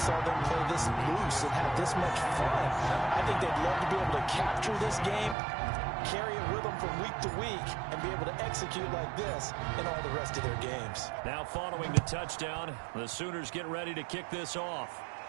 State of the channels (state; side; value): drops out; left; at 5.4 s